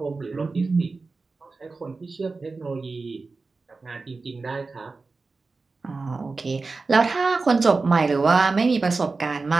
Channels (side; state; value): left; quieter; 3.9 dB